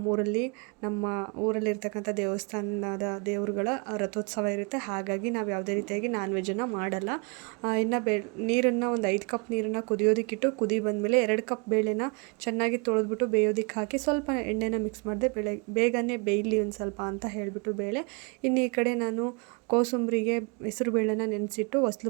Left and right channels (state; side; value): quieter; left; 32.6 dB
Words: ಊರಲ್ಲಿರ್ತಕ್ಕಂಥ ದೇವಸ್ಥಾನದ ದೇವರುಗಳ ರಥೋತ್ಸವ ಇರುತ್ತೆ. ಹಾಗಾಗಿ ನಾವು ಯಾವುದೇ ರೀತಿಯಾಗಿ ನಾನ್ ವೆಜ್ಜನ್ನು ಮಾಡಲ್ಲ. ಇನ್ನು ನೀರನ್ನು ಒಂದು 5 ಕಪ್ ನೀರನ್ನು ಕುದಿಯೋದಕ್ಕಿಟ್ಟು ಕುದಿ ಬಂದಮೇಲೆ 2 ಕಪ್ ಬೇಳೆನ ಚೆನ್ನಾಗಿ ತೊಳೆದ್ಬಿಟ್ಟು ಬೇಯೋದಕ್ಕೆ ಹಾಕಿ ಸ್ವಲ್ಪ ಎಣ್ಣೆನ ಮಿಕ್ಸ್ ಮಾಡಿದೆ. ಬೇಗನೆ ಬೇಯಲಿ ಒಂದು ಸ್ವಲ್ಪ ಅಂತ ಹೇಳಿಬಿಟ್ಟು ಬೇಳೆ. ಇನ್ನು ಈ ಕಡೆ ನಾನು ಕೋಸಂಬರಿಗೆ ಹೆಸರು ಬೇಳೆನ ನೆನೆಸಿಟ್ಟು ಹೊಸ್ಲು